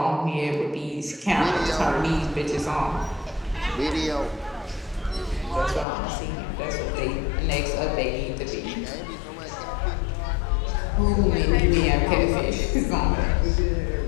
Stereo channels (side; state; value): right; drops out; at 5.9 s